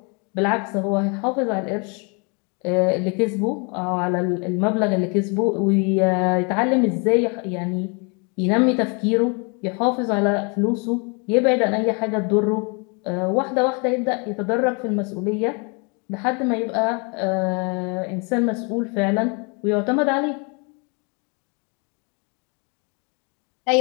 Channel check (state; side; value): quieter; right; 33.7 dB